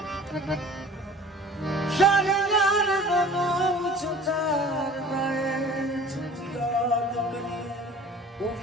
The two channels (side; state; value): both; normal; correlation 0.45